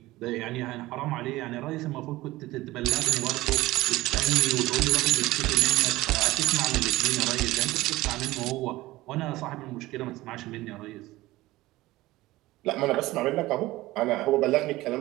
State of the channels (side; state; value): left; quieter; 18.3 dB